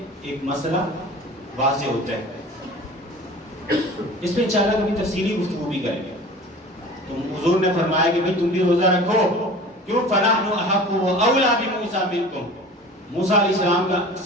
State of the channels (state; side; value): normal; both; correlation 0.40